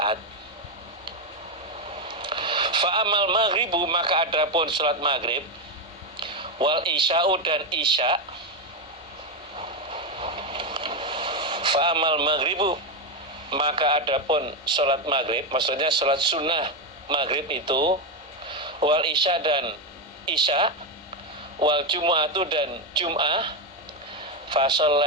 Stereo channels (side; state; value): both; normal; correlation 0.08